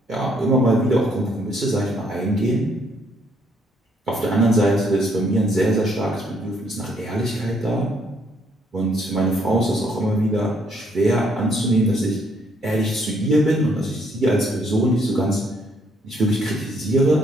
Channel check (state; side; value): normal; both; correlation 0.69